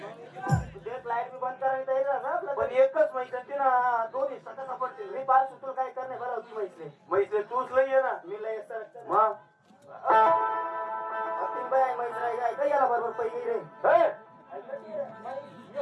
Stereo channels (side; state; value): both; identical; correlation 1.00